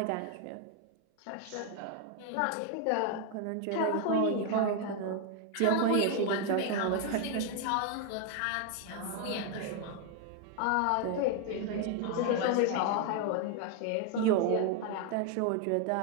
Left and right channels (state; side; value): different; both; correlation 0.01